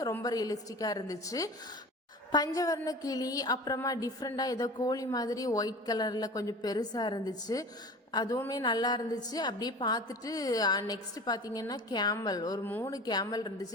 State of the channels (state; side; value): normal; both; correlation 0.38